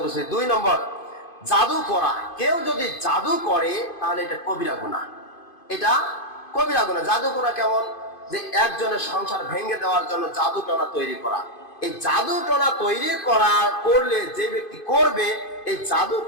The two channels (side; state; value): right; late; 2.5 ms